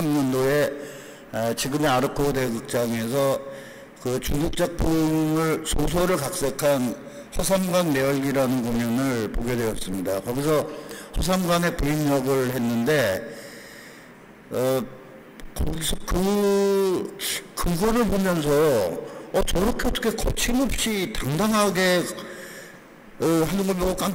지금의 아르코 대극장에서 그 중국 작품을 소설을 각색한 허삼관 매열기라는 공연을 보게 되었습니다. 거기서 허삼관의 부인 역을 했는데 거기서 그거를 보면서 저렇게 어떻게 거침없이 당당하게 하는 걸 보고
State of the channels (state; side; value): identical; both; correlation 1.00